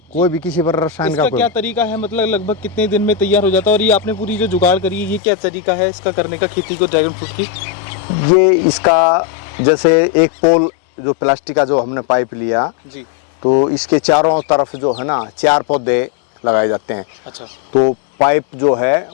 कोई भी किसी पर रसायन इसका का क्या तरीका है? मतलब लगभग कितने दिन में तैयार हो जाता है? और ये आपने पूरी जो जुगाड़ करी है, ये क्या तरीका है इसका करने का, खेती को ड्रैगन फ्रूट की? ये इसका जैसे एक पोल जो प्लास्टिक का जो हमने पाइप लिया, जी, तो इसके चारों तरफ जो है ना 4 पौधे लगाए जाते हैं। अच्छा, तो पाइप जो है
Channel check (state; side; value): drops out; right; at 5.2 s